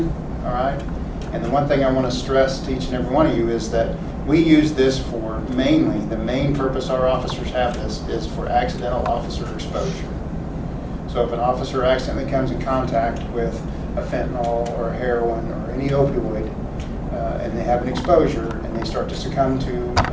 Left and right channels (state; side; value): identical; both; correlation 1.00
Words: all right? And the one thing I want to stress to each and every one of you is that we use this for mainly, the main purpose our officers have this is for accidental officer exposure. So if an officer accidentally comes in contact with a fentanyl or a heroin or any opioid, and they have an exposure and they start to succumb to